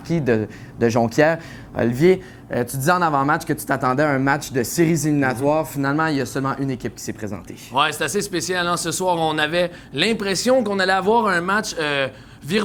de Jonquière. Olivier, tu disais en avant-match que tu t'attendais à un match de séries éliminatoires. Finalement, il y a seulement une équipe qui s'est présentée. Ouais, c'est assez spécial. Hein? Ce soir, on avait l'impression qu'on allait avoir un match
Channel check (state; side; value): identical; both; correlation 1.00